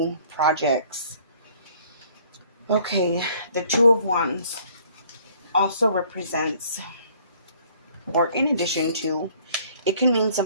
projects. Okay, the Two of Wands also represents, or in addition to, it can mean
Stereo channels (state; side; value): inverted; both; correlation -0.58